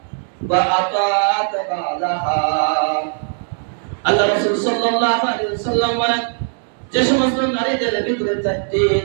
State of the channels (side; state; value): left; silent; digital silence